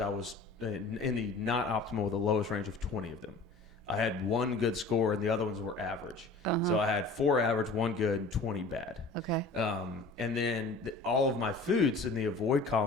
I was in the not optimal, the lowest range of 20 of them. I had 1 good score, and the other ones were average. Uh-huh. So I had 4 average, 1 good, and 20 bad. Okay. And then all of my foods in the avoid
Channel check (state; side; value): quieter; right; 3.4 dB